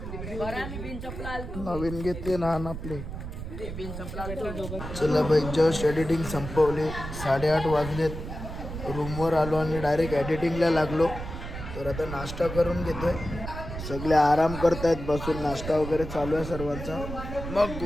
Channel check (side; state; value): right; noise; rumble, 8 dB below the sound